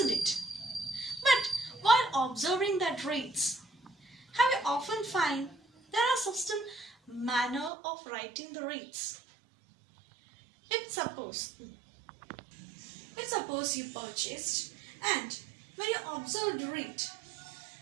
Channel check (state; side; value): drops out; left; at 7.7 s